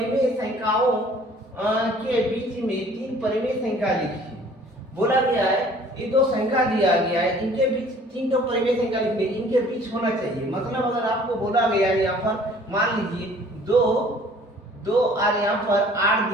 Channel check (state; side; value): normal; both; correlation 0.53